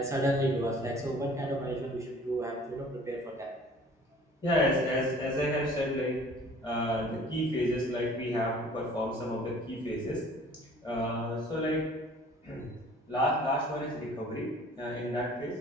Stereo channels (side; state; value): both; normal; correlation 0.50